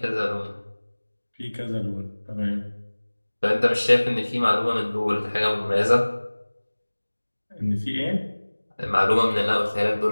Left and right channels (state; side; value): inverted; both; correlation -1.00